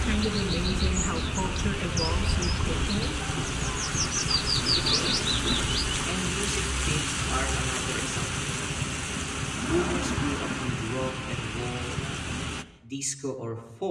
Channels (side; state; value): both; identical; correlation 1.00